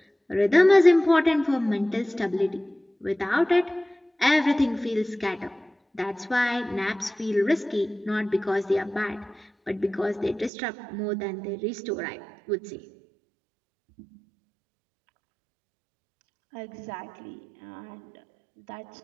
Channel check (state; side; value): drops out; left; at 10.5 s